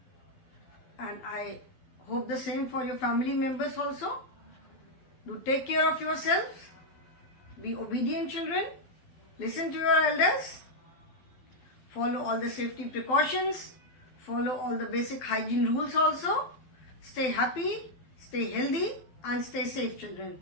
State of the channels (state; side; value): late; right; 12 ms